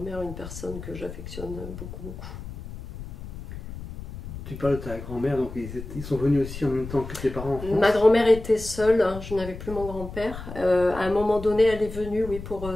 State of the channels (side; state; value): left; noise; rumble, 11 dB below the sound